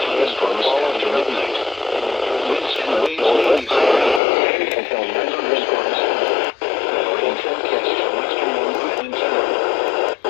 after midnight. Winds and waves may be high. Thunderstorms. Rain forecast for western New England Sound.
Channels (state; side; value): drops out; right; at 4.2 s